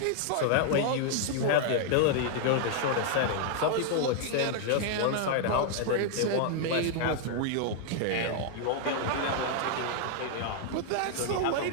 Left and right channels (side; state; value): both; different; correlation 0.00